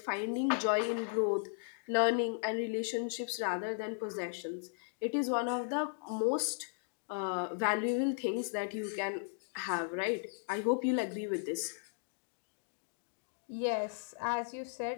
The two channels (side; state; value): right; silent; digital silence